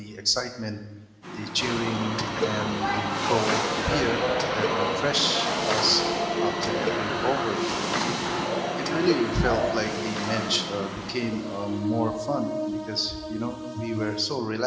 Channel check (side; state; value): both; identical; correlation 1.00